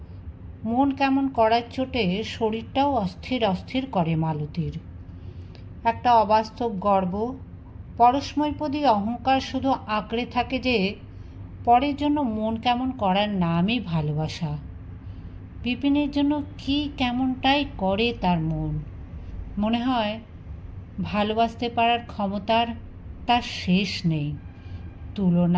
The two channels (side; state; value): both; identical; correlation 1.00